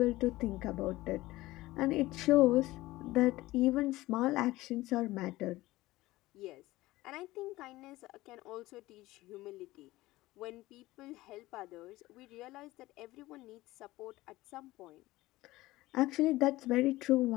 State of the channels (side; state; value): right; quieter; 18.2 dB